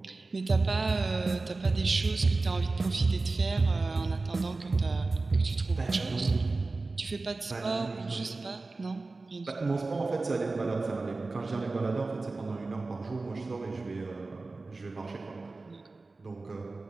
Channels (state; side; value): quieter; left; 3.5 dB